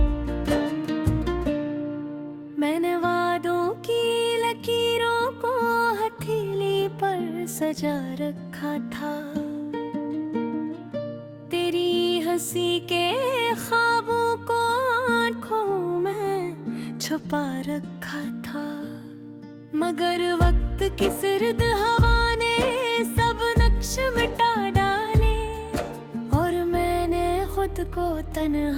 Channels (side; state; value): both; identical; correlation 1.00